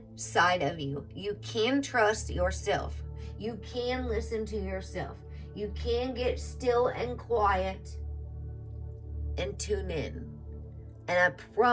of you. You can trust yourself. You can listen to yourself. You can get still and quiet and tune in. And I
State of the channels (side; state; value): both; identical; correlation 1.00